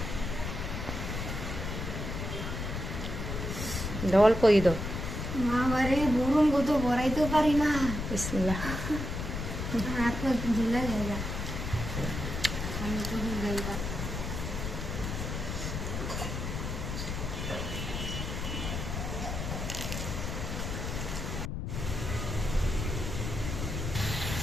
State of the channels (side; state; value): left; noise; rumble, 4 dB below the sound